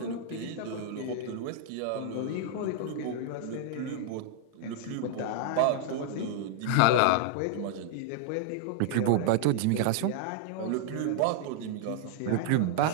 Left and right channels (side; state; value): both; different; correlation -0.01